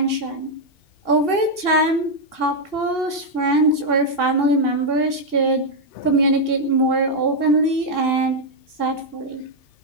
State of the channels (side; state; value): right; late; 2.7 ms